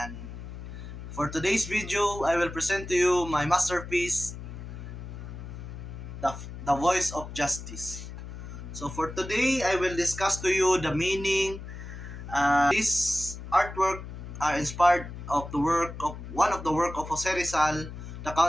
for today's video, I will present to you my masterpiece, the Voice of Justice. So for today, I will discuss to you the meaning. This artwork are inspired of the work of one of the work of Jose Rizal, the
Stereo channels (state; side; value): noise; left; hum, 10 dB below the sound